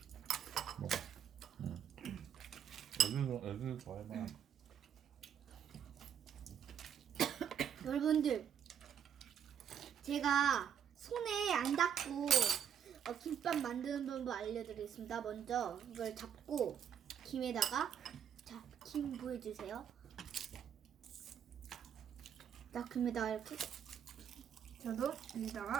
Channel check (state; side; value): quieter; left; 8.7 dB